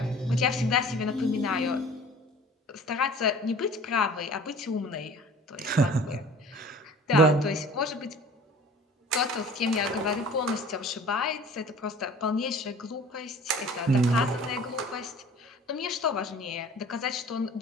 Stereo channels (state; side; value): normal; both; correlation 0.46